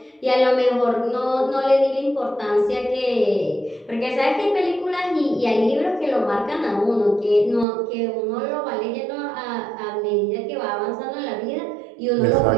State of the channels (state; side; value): drops out; left; at 7.7 s